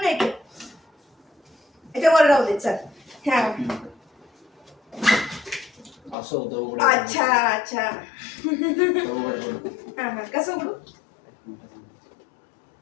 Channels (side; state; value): right; drops out; at 6.2 s